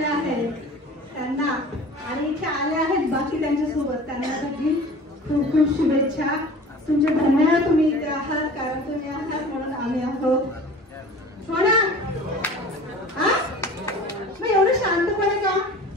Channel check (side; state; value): both; normal; correlation 0.42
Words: आहेत त्यांना आणि इथे आले आहेत बाकी त्यांच्यासोबत त्यांच्यासाठी खूप खूप शुभेच्छा. तुमचे धन्यवाद, तुम्ही इथे आहात, कारण तुम्ही आहात म्हणून आम्ही आहोत. हो ना? हा मग एवढं शांतपणे का?